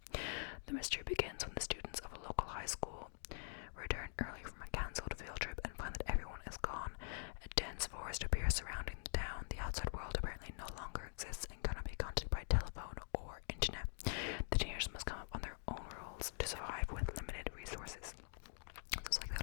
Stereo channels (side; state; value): right; silent; digital silence